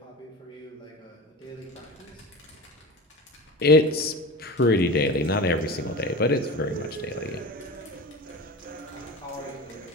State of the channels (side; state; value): both; normal; correlation 0.30